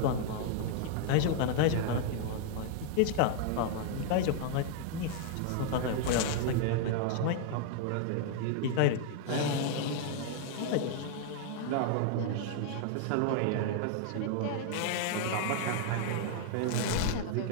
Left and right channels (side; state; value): both; different; correlation 0.00